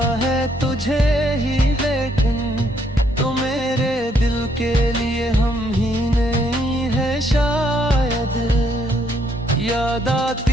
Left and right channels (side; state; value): both; normal; correlation 0.71